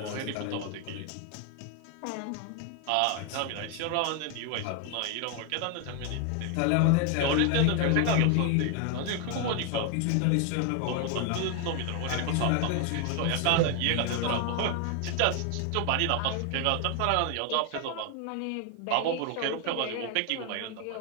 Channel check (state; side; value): different; both; correlation 0.01